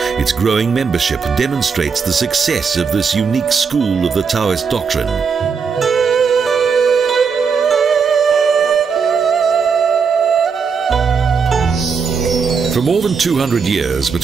Its growing membership demonstrates the success of this unique school of the Taoist doctrine. For more than 200 years,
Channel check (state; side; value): quieter; left; 5.8 dB